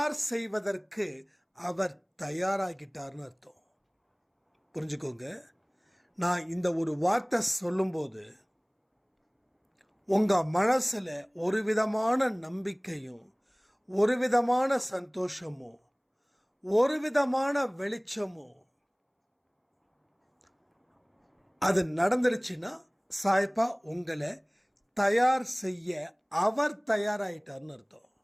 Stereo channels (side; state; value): both; identical; correlation 1.00